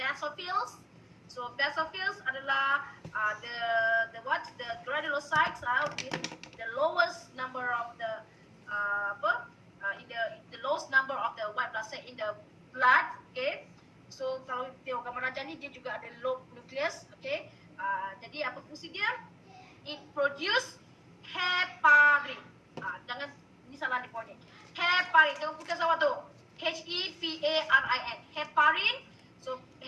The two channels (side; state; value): both; identical; correlation 1.00